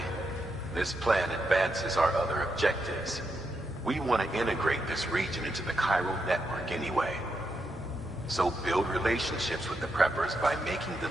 this plan advances our other objectives. We want to integrate this region into the Cairo network anyway. So build relationships with the preppers by making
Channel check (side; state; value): both; normal; correlation 0.83